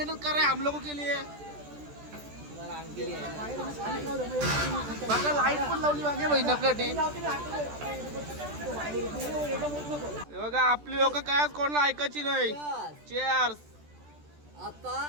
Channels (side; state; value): left; late; 14 ms